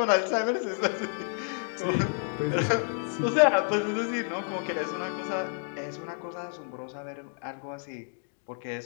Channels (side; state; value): right; silent; 58 dB below the other